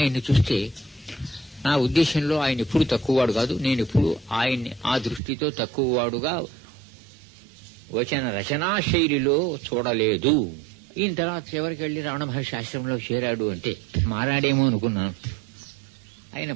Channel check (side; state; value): left; drops out; at 5.2 s